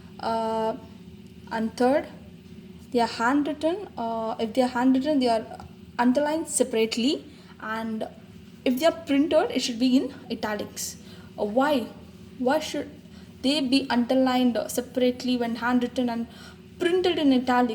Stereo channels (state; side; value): identical; both; correlation 1.00